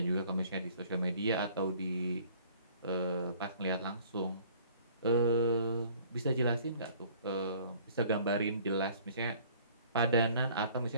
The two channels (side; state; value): both; inverted; correlation -0.54